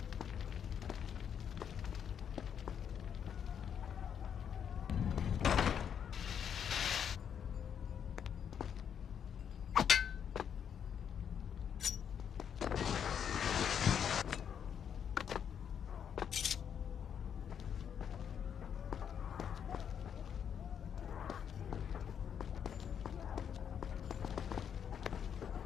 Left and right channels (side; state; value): right; quieter; 8.1 dB